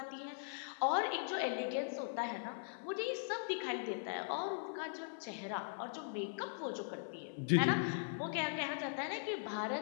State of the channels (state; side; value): silent; right; 51 dB below the other